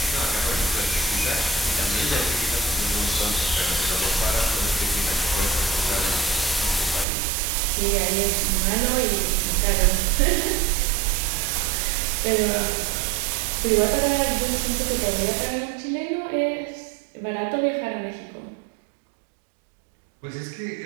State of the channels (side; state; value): left; drops out; at 7.1 s